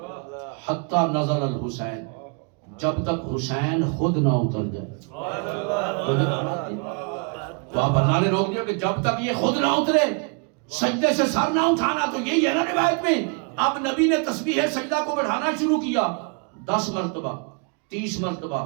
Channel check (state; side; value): quieter; left; 37.1 dB